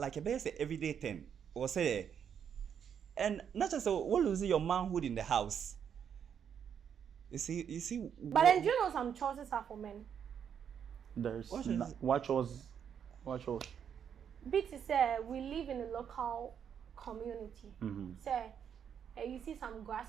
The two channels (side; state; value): left; quieter; 8.1 dB